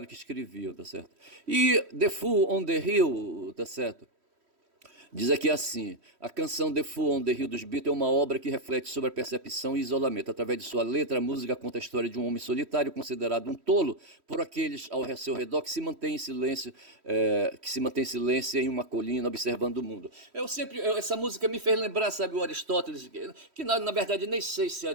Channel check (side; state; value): left; late; 3.1 ms